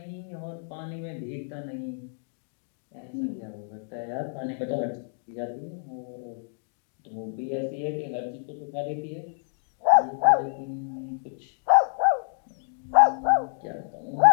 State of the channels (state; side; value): silent; right; digital silence